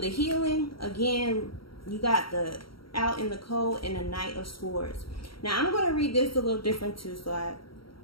healing, again, you got the out in the cold and the Knight of Swords. Now, I'm going to read this a little different too, so I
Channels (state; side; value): late; right; 0.74 ms